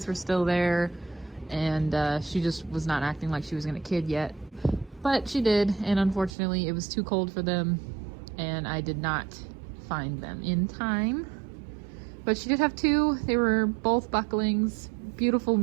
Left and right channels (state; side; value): drops out; left; at 6.3 s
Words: were still there, and she just was not acting like she was gonna kid yet. But she did, and unfortunately it was too cold for them, and I did not find them in time. But she did have two. They were both bucklings, beautiful